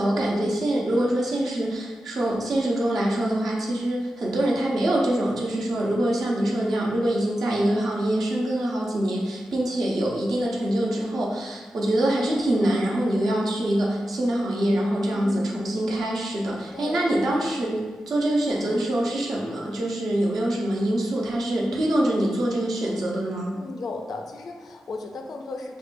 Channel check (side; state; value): both; normal; correlation 0.91